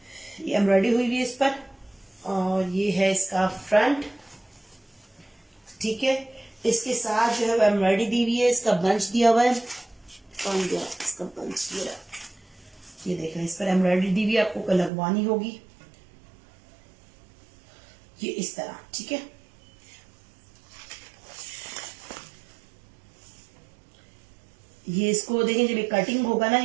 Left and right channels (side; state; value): left; drops out; at 14.9 s